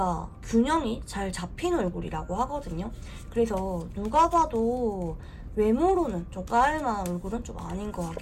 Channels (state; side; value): identical; both; correlation 1.00